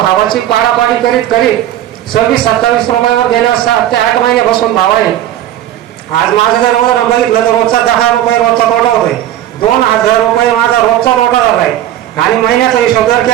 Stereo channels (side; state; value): left; quieter; 12.3 dB